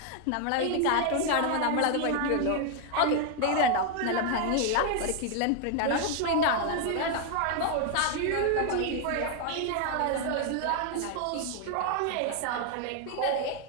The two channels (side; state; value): both; different; correlation 0.00